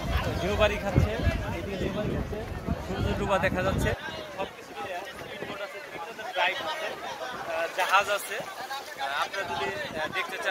ঢেউ বাড়ি খাচ্ছে, এদিকে ঢেউ বাড়ি খাচ্ছে, সূর্য ডুবা দেখা যাচ্ছে। সব কিছু মিলে স্পিড বোট আছে, ড্রাইভ আছে, জাহাজ আছে। আপনারা যদি দেখতে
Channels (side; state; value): both; identical; correlation 1.00